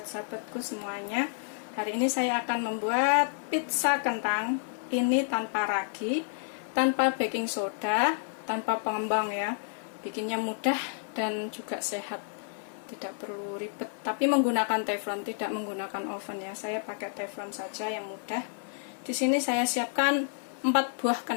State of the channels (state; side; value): silent; right; digital silence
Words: sahabatku semuanya. Hari ini saya akan membuat pizza kentang. Ini tanpa ragi, tanpa baking soda, tanpa pengembang ya. Bikinnya mudah dan juga sehat. Tidak perlu ribet, tapi menggunakan teflon, tidak menggunakan oven ya. Saya pakai teflon saja yang mudah. Di sini saya siapkan 4 buah